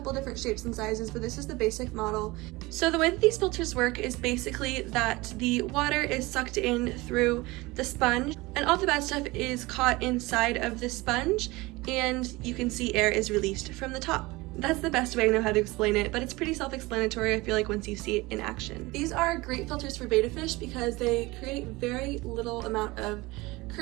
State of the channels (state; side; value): quieter; left; 21.9 dB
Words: different shapes and sizes, but this is the basic model. So the way that these filters work is basically that the water is sucked in through the sponge and all the bad stuff is caught inside of the sponge, and you can see air is released from the top. That's the best way I know how to explain it, but it's pretty self-explanatory, I feel like, once you see it in action. These are great filters for betta fish because they create very little amount of